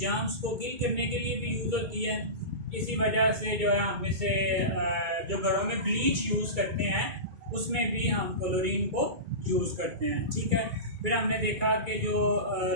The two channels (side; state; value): left; late; 2.3 ms